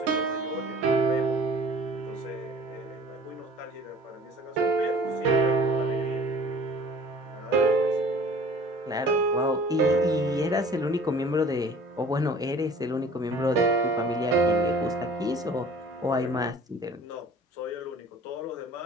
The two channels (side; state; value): both; normal; correlation 0.47